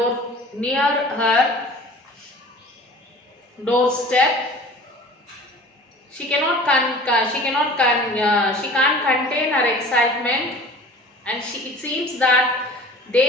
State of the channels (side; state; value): both; normal; correlation 0.43